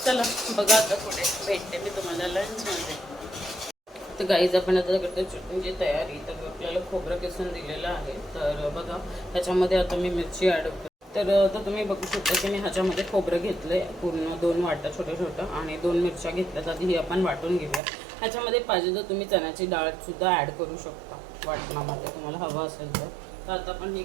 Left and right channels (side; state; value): left; drops out; at 17.8 s